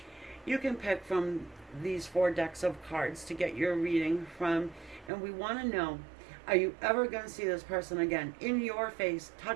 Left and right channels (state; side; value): drops out; left; at 5.1 s